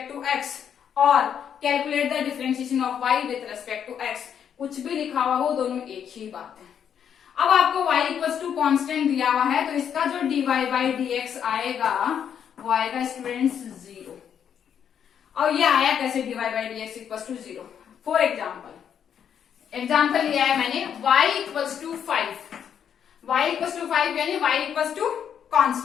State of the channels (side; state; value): right; quieter; 8.4 dB